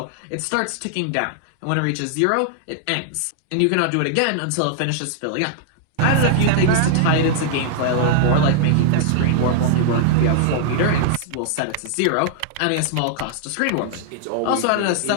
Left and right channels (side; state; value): both; different; correlation -0.01